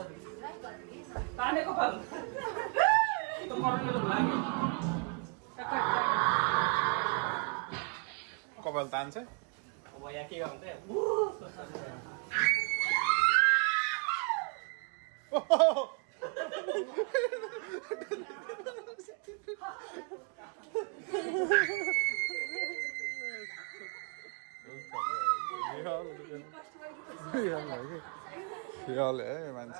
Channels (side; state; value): left; quieter; 38.0 dB